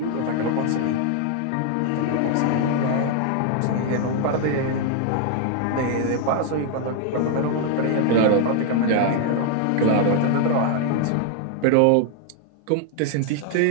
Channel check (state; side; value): different; both; correlation 0.00